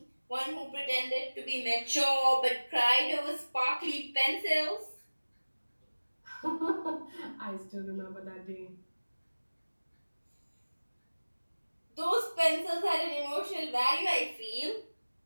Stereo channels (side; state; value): both; inverted; correlation -1.00